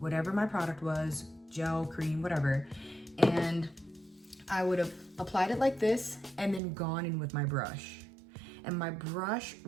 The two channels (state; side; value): drops out; left; at 6.6 s